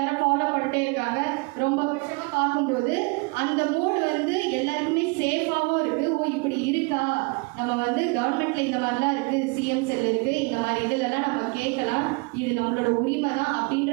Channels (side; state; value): left; quieter; 30.6 dB